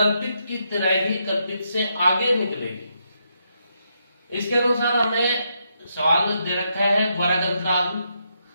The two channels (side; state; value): both; inverted; correlation -0.80